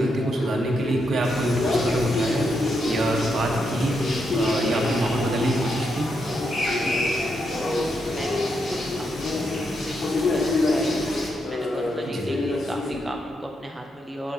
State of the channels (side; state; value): both; normal; correlation 0.81